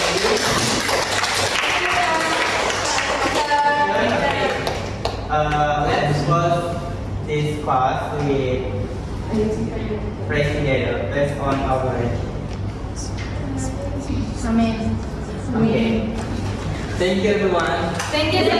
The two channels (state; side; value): identical; both; correlation 1.00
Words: Let's close this class with praise together based on our Amen. Okay. Thank you everyone. Thank you so